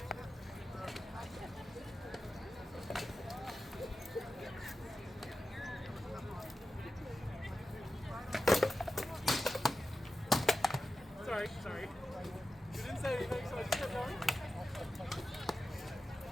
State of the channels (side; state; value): both; normal; correlation 0.93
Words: Sorry. You didn't say anything, so I just kept going.